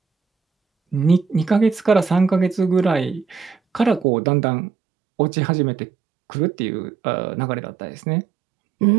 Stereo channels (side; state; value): left; drops out; at 4.0 s